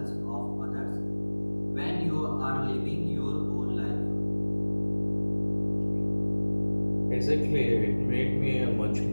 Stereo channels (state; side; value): inverted; both; correlation -1.00